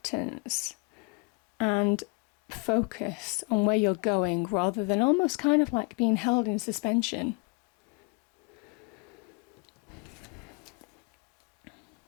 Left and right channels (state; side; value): quieter; right; 32.4 dB